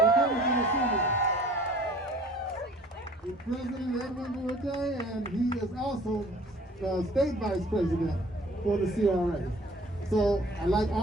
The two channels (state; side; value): normal; both; correlation 0.52